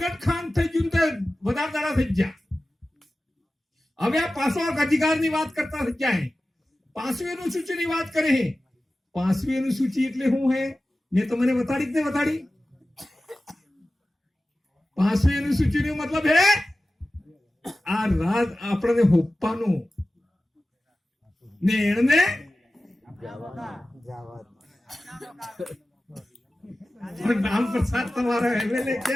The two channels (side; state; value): both; normal; correlation 0.95